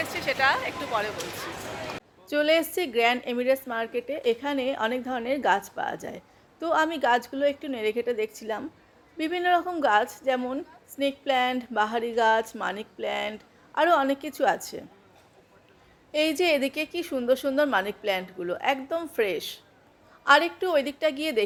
এসেছি সেটা একটু পরে বলছি। চলে এসেছি গ্র্যান্ড এমিরেটস মার্কেটে। এখানে অনেক ধরনের গাছ পাওয়া যায়। তো আমি গাছগুলো একটু নেড়ে ঘেটে দেখছিলাম। বিভিন্ন রকম গাছ, যেমন স্নেক প্ল্যান্ট, বাহারি গাছ, মানিক প্ল্যান্ট, আরও অনেক কিছু আছে। এই যে এদিকে কি সুন্দর সুন্দর মানি প্ল্যান্টগুলো, একদম ফ্রেশ। আর একটু ওই দিকটা গিয়ে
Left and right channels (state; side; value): identical; both; correlation 1.00